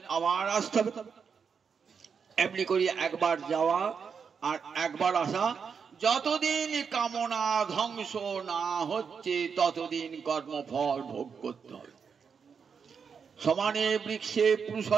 আবার আসতে হবে। এমনি করি একবার যাওয়া আর একবার আসা। যতদিন কামনা ধ্বংস না হচ্ছে ততদিন কর্মফল ভোগ করতে হবে। সমানে বৃক্ষে পুরুষ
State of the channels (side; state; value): left; quieter; 6.2 dB